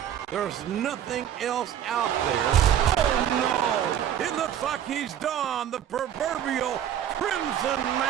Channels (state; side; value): quieter; left; 10.0 dB